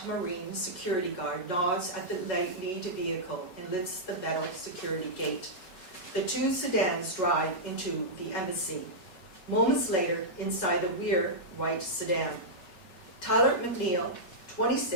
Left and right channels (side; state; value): right; late; 5.4 ms